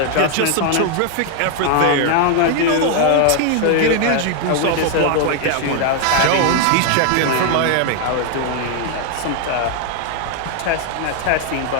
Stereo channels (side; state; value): both; different; correlation 0.00